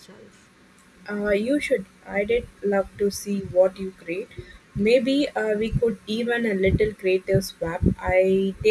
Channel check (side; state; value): both; identical; correlation 1.00